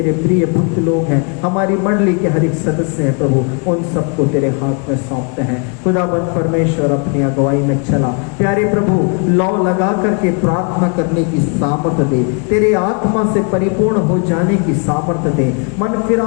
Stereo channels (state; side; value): quieter; right; 37.4 dB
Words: प्रिय भक्त लोग हैं, हमारी मंडली के हर एक सदस्य हैं प्रभु, उन सबको तेरे हाथ में सौंपते हैं। खुदाबंद परमेश्वर अपनी अगुवाई में चला प्यारे प्रभु, लौ लगा करके प्रार्थना करने की सामर्थ दे, तेरे आत्मा से परिपूर्ण हो जाने की सामर्थ दे, मन